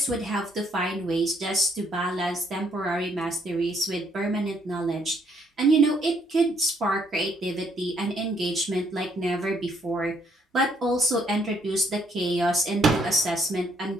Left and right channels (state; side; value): normal; both; correlation 0.69